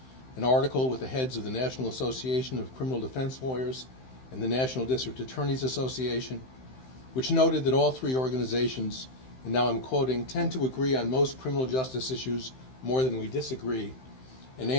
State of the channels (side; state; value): right; late; 15 ms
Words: an article with the heads of the National Association of Criminal Defense Lawyers and the National District Attorneys Association, which noted that all three organizations, and now I'm quoting, tend to agree on most criminal justice issues more than we disagree, and